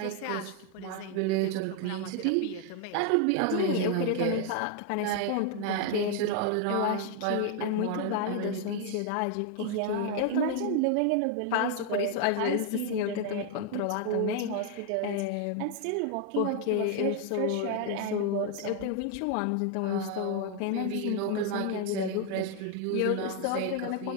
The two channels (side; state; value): both; different; correlation 0.00